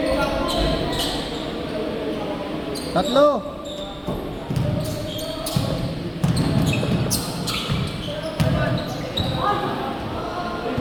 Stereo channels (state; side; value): identical; both; correlation 1.00